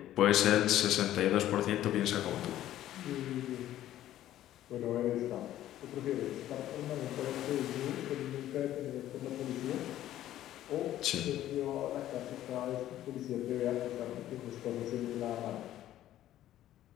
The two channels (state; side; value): quieter; right; 13.0 dB